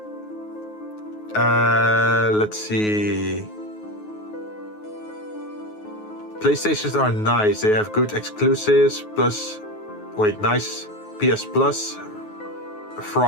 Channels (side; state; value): right; late; 9.4 ms